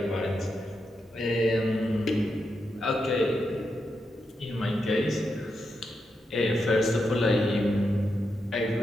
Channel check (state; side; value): normal; both; correlation 0.85